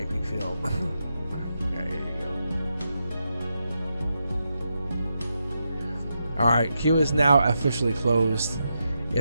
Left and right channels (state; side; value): inverted; both; correlation -0.85